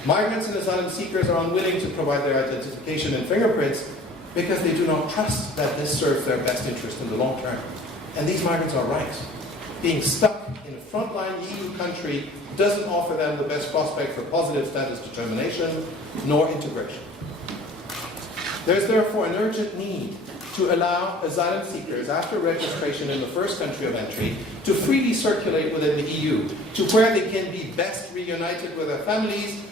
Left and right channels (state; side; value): normal; both; correlation 0.48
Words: Migrants and asylum seekers are unwilling to provide their identification and fingerprints because they do not trust that this serves their best interest in the long term. And these migrants are right. Being stuck in a frontline EU country doesn't offer them the best prospect for positive status determination nor integration. There is therefore an urgent need to allow asylum seekers after registration in the first country of entry to freely circulate within the EU to where they can be best reunited with their families